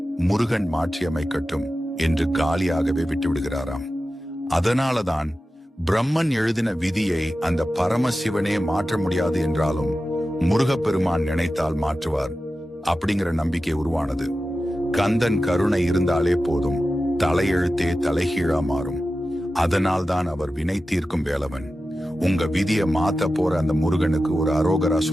முருகன் மாற்றி அமைக்கட்டும் என்று காலியாகவே விட்டுவிடுகிறாராம். அதனாலதான் பிரம்மன் எழுதின விதியை அந்த பரமசிவனே மாற்ற முடியாது என்றாலும் முருகப்பெருமான் நினைத்தால் மாற்றுவார் அப்படிங்கிற நம்பிக்கை உருவானது. கந்தன் கருணை இருந்தாலே போதும், தலையெழுத்தே தலைகீழா மாறும். அதனால்தான் அவர் வினை தீர்க்கும் வேலவன். உங்க விதியை மாத்த போற அந்த முருகனுக்கு ஒரு அரோகரா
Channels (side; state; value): both; normal; correlation 0.93